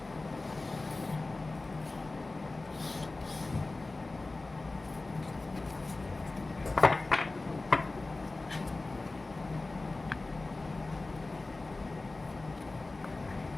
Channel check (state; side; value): quieter; right; 3.2 dB